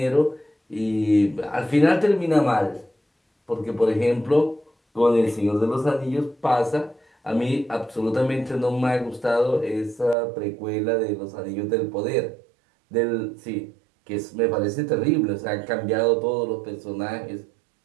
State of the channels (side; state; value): left; drops out; at 10.2 s